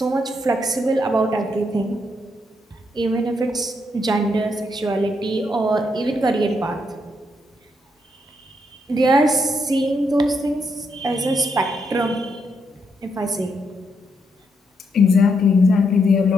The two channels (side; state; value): both; normal; correlation 0.78